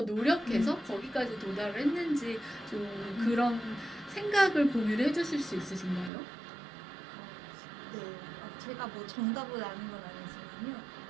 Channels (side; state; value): left; drops out; at 6.1 s